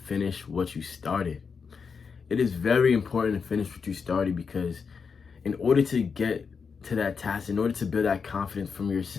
what you started. It is very important to finish what you started because in order to get to that task, in order to build that confidence from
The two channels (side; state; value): right; quieter; 5.7 dB